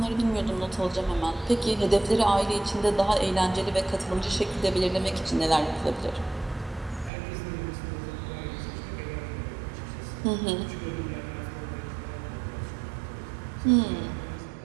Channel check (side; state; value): left; drops out; at 7.1 s